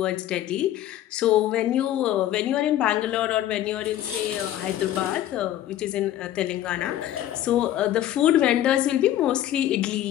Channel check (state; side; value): quieter; right; 12.6 dB